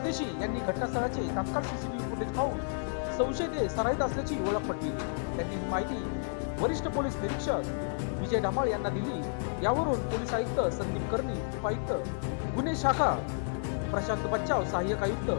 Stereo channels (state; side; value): silent; right; digital silence